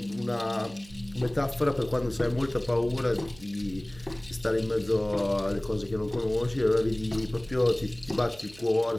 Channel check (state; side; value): noise; right; hum, 21 dB below the sound